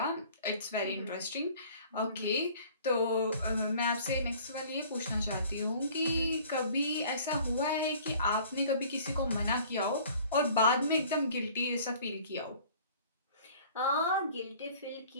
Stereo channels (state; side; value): inverted; both; correlation -0.50